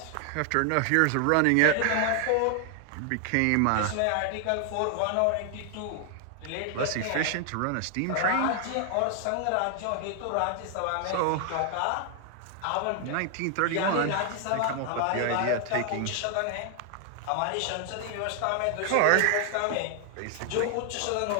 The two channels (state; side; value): different; both; correlation 0.00